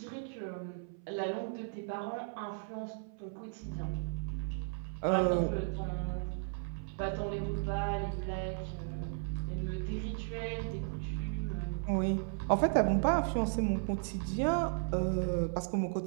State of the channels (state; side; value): silent; left; 54 dB below the other